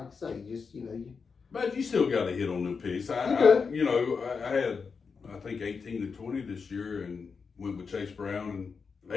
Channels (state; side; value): quieter; right; 5.3 dB